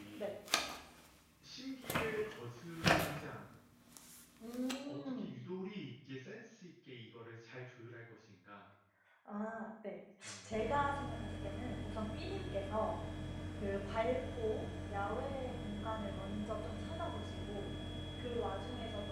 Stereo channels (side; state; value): both; identical; correlation 1.00